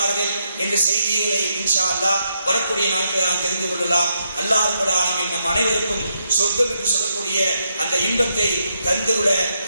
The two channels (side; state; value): both; inverted; correlation -0.79